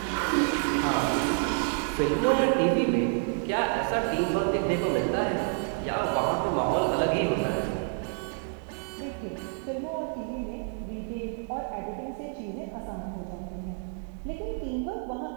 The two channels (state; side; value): silent; left; 56 dB below the other